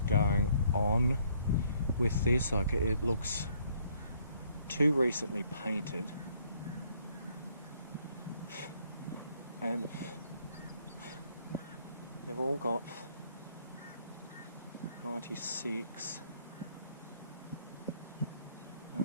going on with this. Like, it looks too recently painted, and they've all got 96.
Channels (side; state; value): both; inverted; correlation -0.65